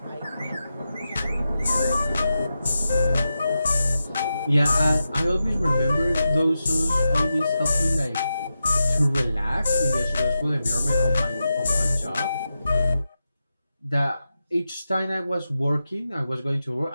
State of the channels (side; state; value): both; inverted; correlation -0.90